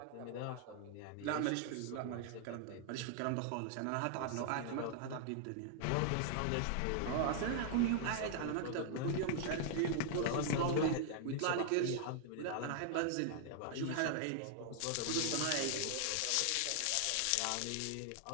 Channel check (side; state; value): both; different; correlation 0.00